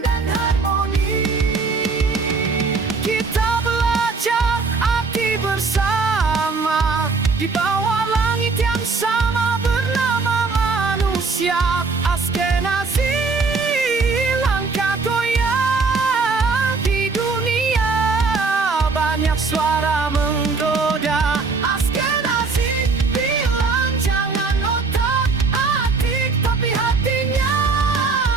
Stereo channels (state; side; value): quieter; left; 4.3 dB